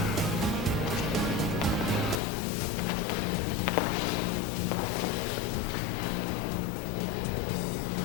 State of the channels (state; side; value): drops out; right; at 2.2 s